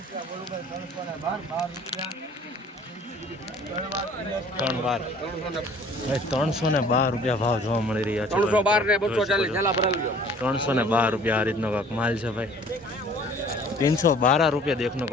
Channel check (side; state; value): both; normal; correlation 0.51